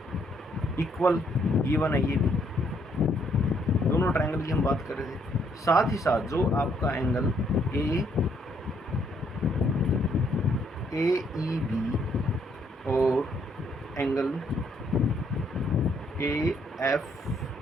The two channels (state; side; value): normal; both; correlation 0.70